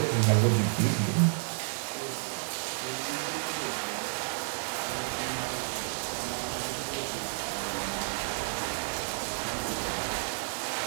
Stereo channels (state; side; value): silent; left; digital silence